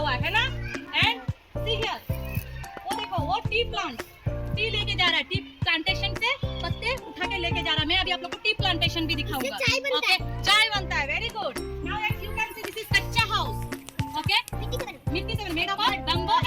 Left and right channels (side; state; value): both; identical; correlation 1.00